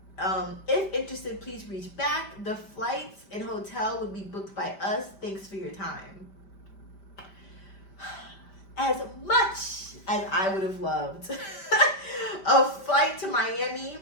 If interested, please reach back. The flights and hotel would be booked by us. Thanks for your time." As much as I would have loved a flight to Miami,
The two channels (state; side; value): late; right; 5.1 ms